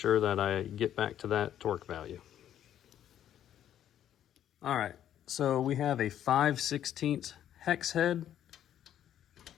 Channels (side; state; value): right; quieter; 10.8 dB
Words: that I get back to that torque value. All right, so we have a 5/16 hex head.